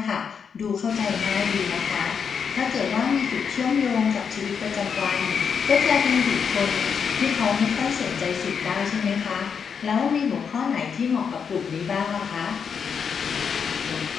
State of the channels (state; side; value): quieter; right; 6.6 dB